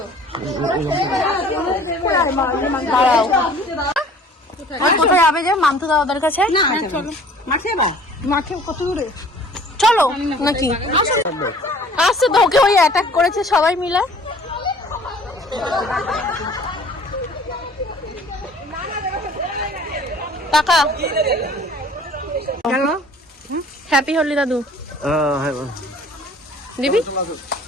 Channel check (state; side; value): normal; both; correlation 0.50